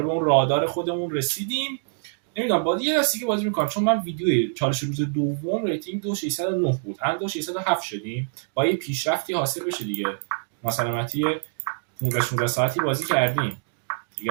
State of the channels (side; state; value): left; silent; digital silence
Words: به اون رادار خودمون رسیدیم. نمیدونم بازی یه دستی که بازی میکنم، چون من ویدیوی چالش روز دوم ریتینگ 2609 بود، الان 2607 شدیم. با یه پیشرفتی حاصل بشه دیگه. مثلا 15-16 ساعتی بازی کردیم دیگه،